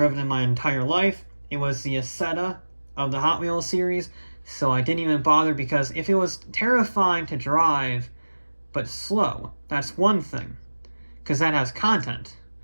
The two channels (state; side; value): inverted; both; correlation -1.00